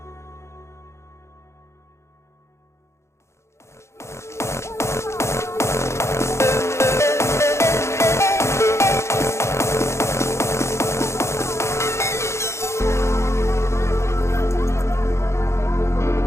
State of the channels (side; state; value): right; late; 0.13 ms